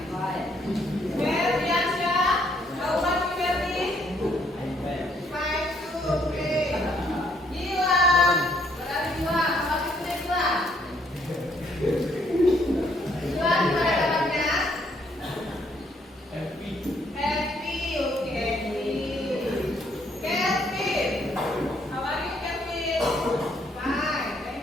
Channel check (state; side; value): normal; both; correlation 0.69